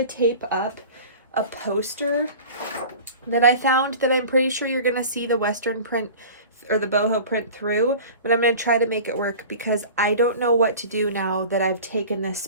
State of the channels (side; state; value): both; inverted; correlation -0.39